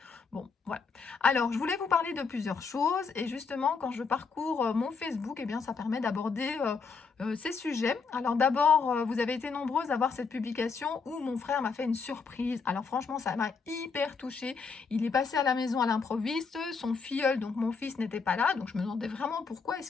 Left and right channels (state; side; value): quieter; right; 5.1 dB